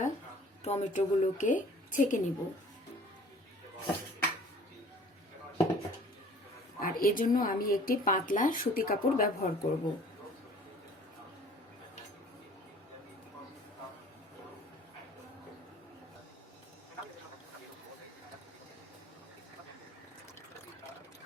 টমেটোগুলোকে ছেঁকে নিব, আর এজন্য আমি একটি পাতলা সুতি কাপড় ব্যবহার করব।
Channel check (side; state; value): both; normal; correlation 0.50